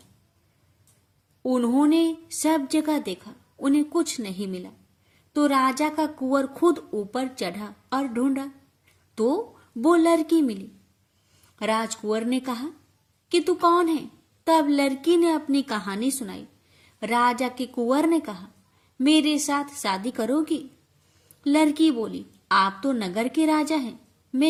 उन्होंने सब जगह देखा, उन्हें कुछ नहीं मिला। तो राजा का कुंवर खुद ऊपर चढ़ा और ढूंढा तो वो लड़की मिली। राजकुंवर ने कहा कि तू कौन है? तब लड़की ने अपनी कहानी सुनाई। राजा के कुंवर ने कहा, मेरे साथ शादी करोगी? लड़की बोली, आप तो नगर के राजा हैं,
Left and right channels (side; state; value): both; identical; correlation 1.00